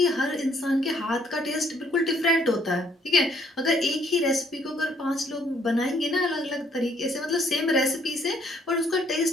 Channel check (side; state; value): both; normal; correlation 0.66